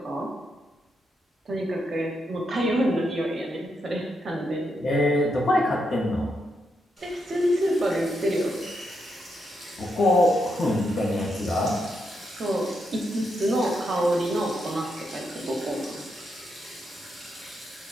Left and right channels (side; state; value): both; normal; correlation 0.82